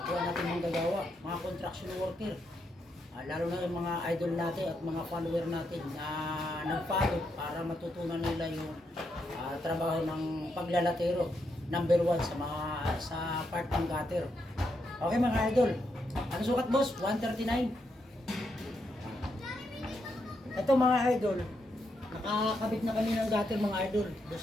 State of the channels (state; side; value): normal; both; correlation 0.81